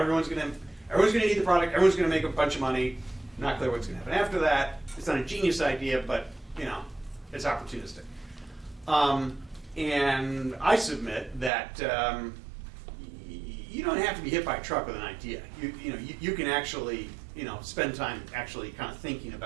going to need the product. Everyone's going to make a bunch of money. Not clear what's going to happen after that. It's not a genius idea, but it's opportunistic. And I submit that you don't have to be hit by a truck with an idea. You can actually spend time actually kind of thinking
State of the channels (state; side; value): drops out; left; at 11.5 s